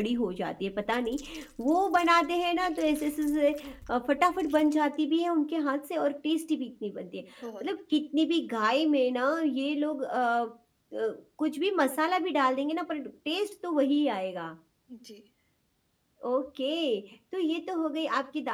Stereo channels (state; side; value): identical; both; correlation 1.00